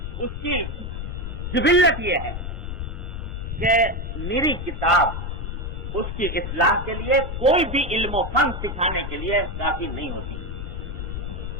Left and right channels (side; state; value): left; noise; rumble, 5 dB below the sound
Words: اس کی جبلت یہ ہے کہ میری کتاب اس کی اصلاح کے لیے کوئی بھی علم و فن سکھانے کے لیے کافی نہیں ہوتی۔